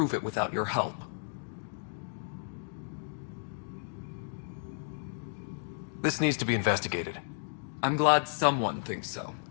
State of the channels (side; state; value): right; silent; digital silence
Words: it without your help. This needs to be investigated. I'm glad someone thinks so.